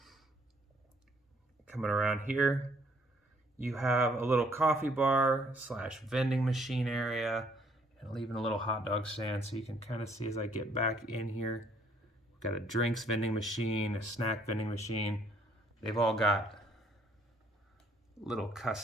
Coming around here, you have a little coffee bar / vending machine area, and even a little hot dog stand. So you can kind of see as I get back in here, we've got a drinks vending machine, a snack vending machine. They've all got little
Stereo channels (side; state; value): both; normal; correlation 0.64